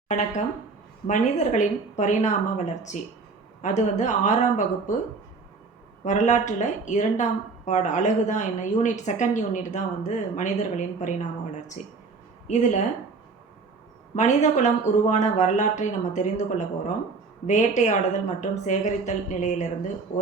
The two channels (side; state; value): left; quieter; 4.4 dB